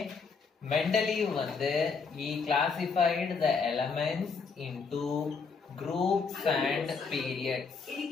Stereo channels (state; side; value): quieter; right; 5.1 dB